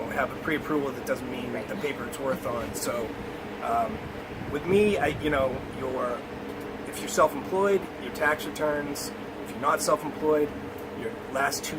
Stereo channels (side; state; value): both; identical; correlation 1.00